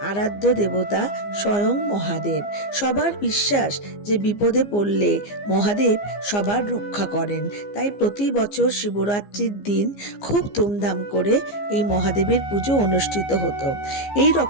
আরাধ্য দেবতা স্বয়ং মহাদেব। সবার বিশ্বাস যে বিপদে পড়লে মহাদেব সবার রক্ষা করেন। তাই প্রতি বছর শিবরাত্রির দিন খুব ধুমধাম করে এই মহাদেবের পুজো অনুষ্ঠিত হতো। এই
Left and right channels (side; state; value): right; late; 15 ms